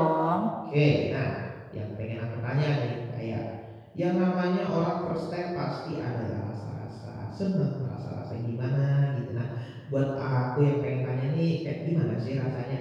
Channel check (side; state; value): both; identical; correlation 1.00